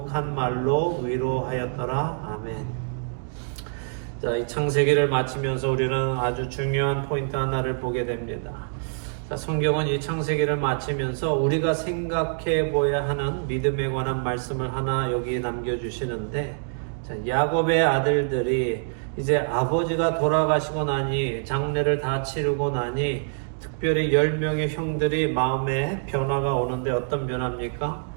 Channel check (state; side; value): silent; left; digital silence